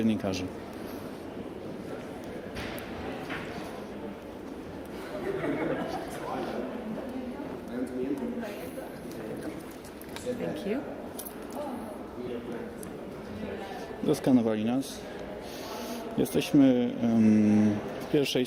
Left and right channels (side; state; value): both; identical; correlation 1.00